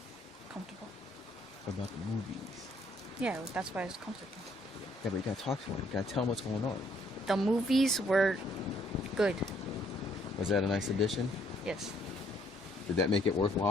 Comfortable. What about the movies? Yeah, that's why it's comfortable. Yeah, but you gotta talk to him. You gotta tell him what's going on. The movies were good. Was that a nice addition? Yes. Did that make it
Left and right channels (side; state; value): both; normal; correlation 0.66